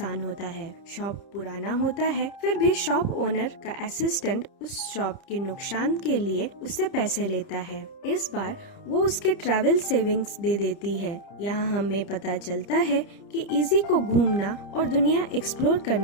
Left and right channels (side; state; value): right; late; 30 ms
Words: होता है। शॉप पुराना होता है, फिर भी शॉप ओनर का असिस्टेंट उस शॉप के नुकसान के लिए उससे पैसे लेता है। इस बार वो उसके ट्रैवल सेविंग्स दे देती है। यहाँ हमें पता चलता है कि इजी को घूमना और दुनिया एक्सप्लोर